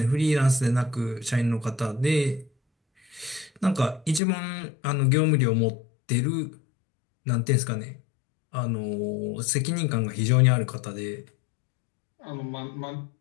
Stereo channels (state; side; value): drops out; right; at 4.2 s